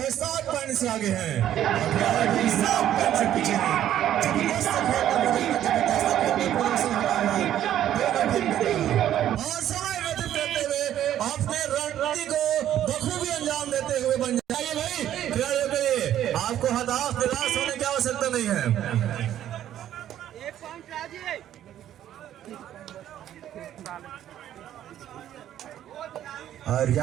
7 पॉइंट से आगे हैं और 7 पॉइंट से पीछे हैं। और समय व्यतीत करते हुए अपने रणनीति को बखूबी अंजाम देते हुए बंजारे भाई खिलाड़ियों के लिए आपको हताश निराश होने की आवश्यकता नहीं है। और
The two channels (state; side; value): quieter; left; 11.5 dB